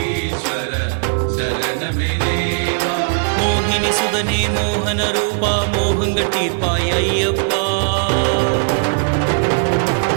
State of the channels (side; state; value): left; silent; digital silence